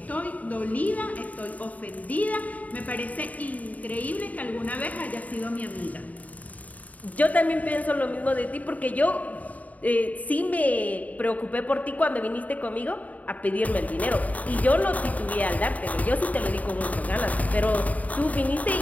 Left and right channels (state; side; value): late; right; 0.072 ms